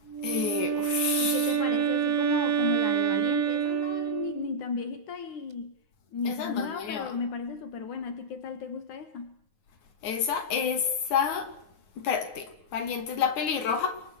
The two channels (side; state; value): right; late; 9.5 ms